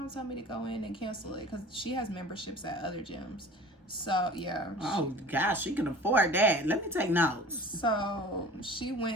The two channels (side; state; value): both; normal; correlation 0.42